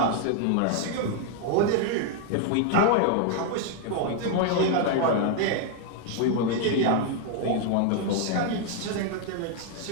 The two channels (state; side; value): different; both; correlation 0.00